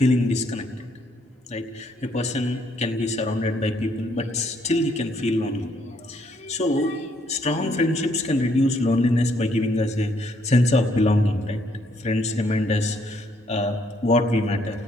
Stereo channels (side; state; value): both; normal; correlation 0.70